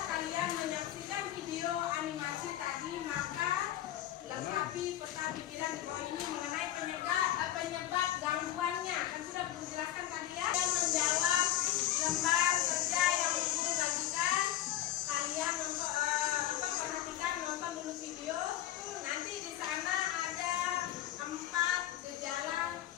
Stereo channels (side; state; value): right; quieter; 13.3 dB